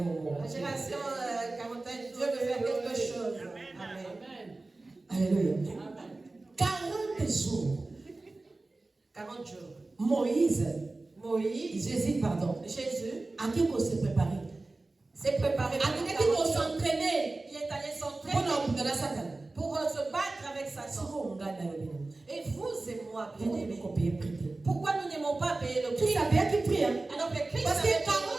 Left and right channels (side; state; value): left; quieter; 3.2 dB